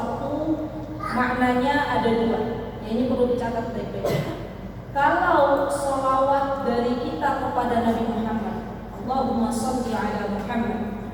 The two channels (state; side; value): identical; both; correlation 1.00